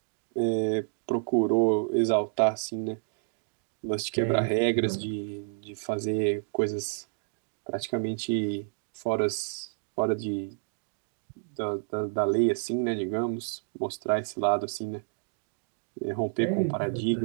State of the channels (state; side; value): silent; left; digital silence